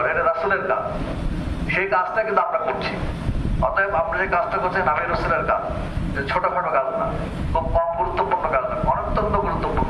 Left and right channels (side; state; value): both; identical; correlation 1.00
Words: এটা রাসূলের কাজ। সেই কাজটা কিন্তু আমরা করছি। অতএব আমরা যে কাজটা করছি নবী রাসূলের কাজ, ছোটখাটো কাজ না, খুব কম গুরুত্বপূর্ণ কাজ না, অত্যন্ত